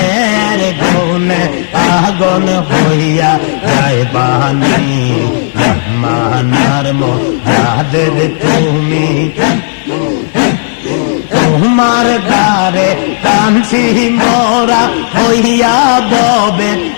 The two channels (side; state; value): right; silent; digital silence